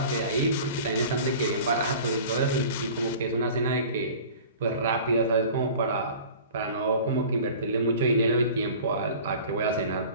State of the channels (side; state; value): both; inverted; correlation -0.42